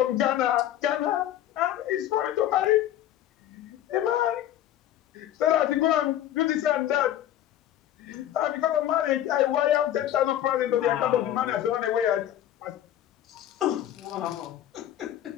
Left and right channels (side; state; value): right; quieter; 12.0 dB